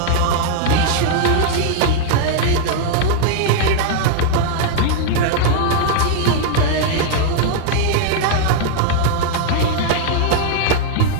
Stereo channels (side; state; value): both; different; correlation -0.01